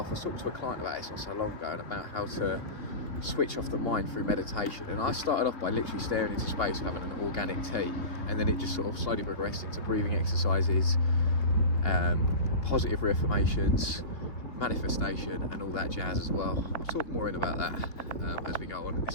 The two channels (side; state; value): right; late; 3.0 ms